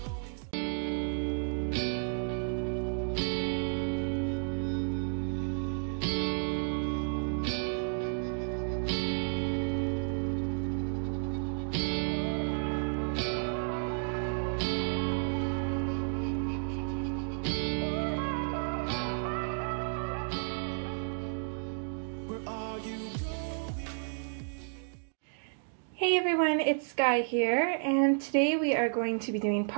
Where are you going? Hey everyone, it's Skyee here, and today we are going to be doing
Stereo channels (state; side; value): silent; left; digital silence